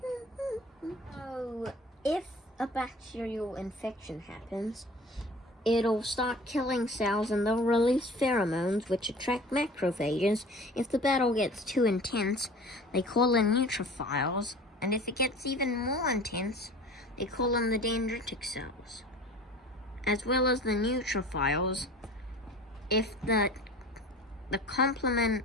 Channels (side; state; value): both; normal; correlation 0.42